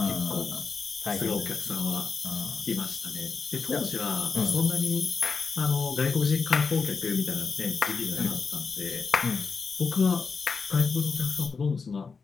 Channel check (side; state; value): right; quieter; 5.0 dB